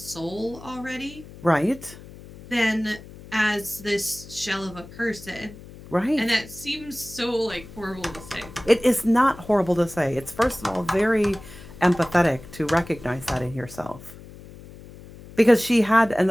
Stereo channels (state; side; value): noise; left; hum, 18 dB below the sound